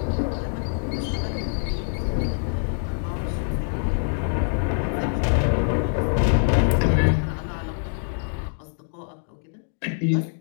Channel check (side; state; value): right; silent; digital silence